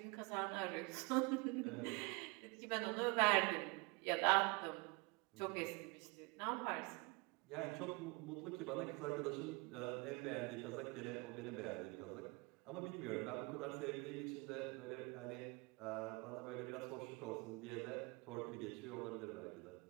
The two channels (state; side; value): quieter; left; 27.1 dB